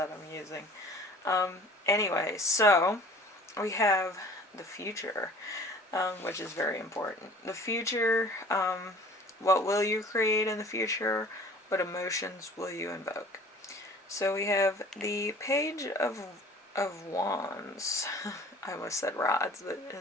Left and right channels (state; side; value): normal; both; correlation 0.47